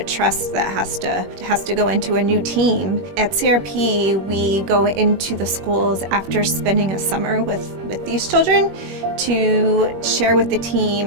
trust that has to go into a new team. At CRP, we go into the schools after spending a summer with these children to share with the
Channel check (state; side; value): late; left; 21 ms